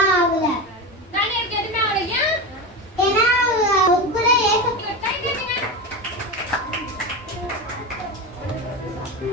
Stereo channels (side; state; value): both; normal; correlation 0.21